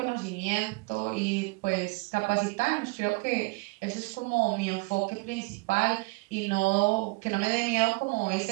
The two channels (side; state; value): left; quieter; 27.1 dB